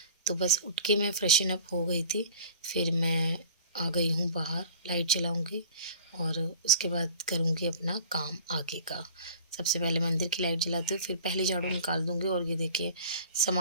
तो बस उठ के मैं फ्रेशन अप हो गई थी। फिर मैं आ गई हूँ बाहर, लाइट जलाऊंगी और उसके बाद करूँगी अपना काम आगे का। सबसे पहले मंदिर की लाइट जलाती हूँ, फिर पहले झाड़ू निकाल दूँगी। और ये देखिए,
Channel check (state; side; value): inverted; both; correlation -0.44